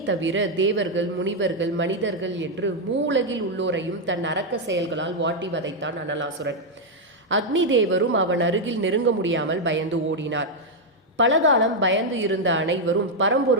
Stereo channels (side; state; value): both; normal; correlation 0.00